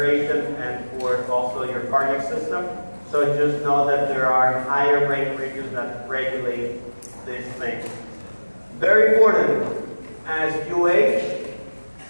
and for also your cardiac system. So just know that there are higher brain regions that regulate these things. Very important, as you age,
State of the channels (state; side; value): inverted; both; correlation -1.00